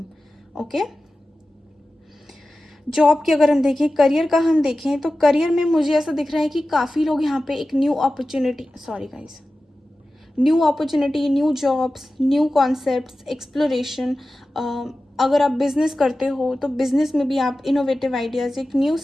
Okay? Job की अगर हम देखें, करियर का हम देखें, तो करियर में मुझे ऐसा दिख रहा है कि काफ़ी लोग यहाँ पे एक new opportunity, sorry guys, new opportunity, new jobs, new concepts, exploration. अगर आप बिजनेस करते हो तो बिजनेस में भी आप इनोवेटिव आइडियाज़, एक न्यू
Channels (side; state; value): both; normal; correlation 0.95